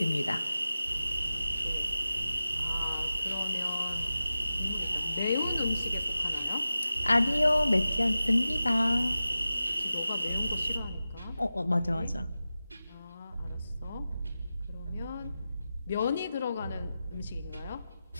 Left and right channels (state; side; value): inverted; both; correlation -0.93